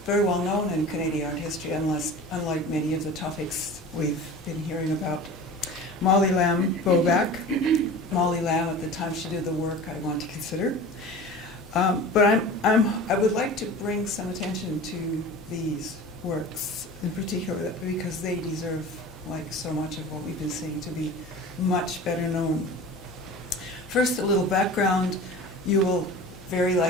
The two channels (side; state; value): right; noise; hum, 23 dB below the sound